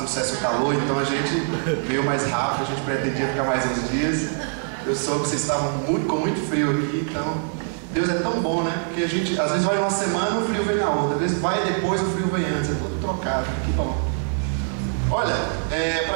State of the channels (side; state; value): left; silent; 63 dB below the other